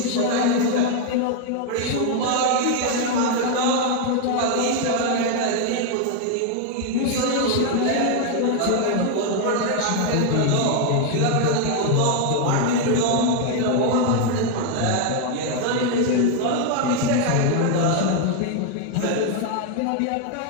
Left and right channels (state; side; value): different; both; correlation 0.00